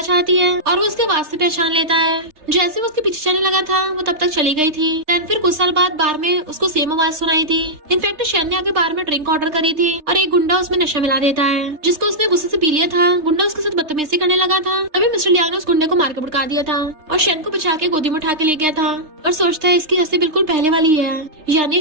जाती है और वो उसके आवाज से पहचान लेता है। जैसे वो उसके पीछे चलने लगा था वो तब तक चली गई थी। देन फिर कुछ साल बाद बार में उसको सेम आवाज सुनाई थी। इनफैक्ट शैन ने आगे बार में ड्रिंक ऑर्डर करी थी और एक गुंडा उसमें नशा मिला देता है, जिसको उसने गुस्से से पी लिया था। गुंडा उसके साथ बदतमीजी करने लगा था। तभी मिस्टर लियांग ने उस गुंडे को मार के भड़का दिया था और शैन को बचा के गोदी में उठा के ले गया था। और सोचता है इसकी हंसी बिल्कुल पहले वाली है, यानी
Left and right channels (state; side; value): late; left; 3.3 ms